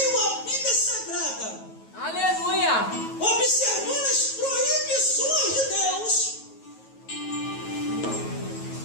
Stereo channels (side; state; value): right; late; 9.2 ms